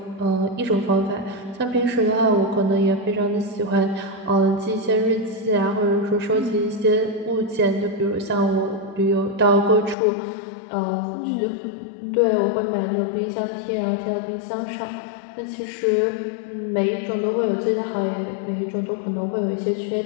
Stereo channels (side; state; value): right; drops out; at 10.0 s